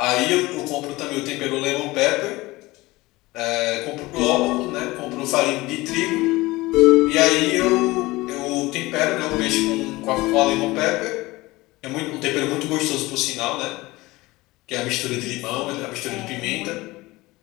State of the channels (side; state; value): right; quieter; 20.4 dB